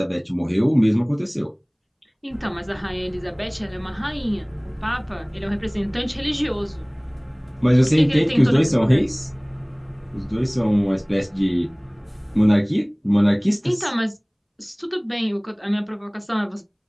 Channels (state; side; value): identical; both; correlation 1.00